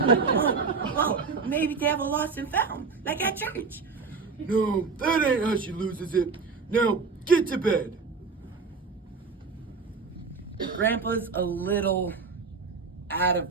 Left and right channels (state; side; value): quieter; left; 4.8 dB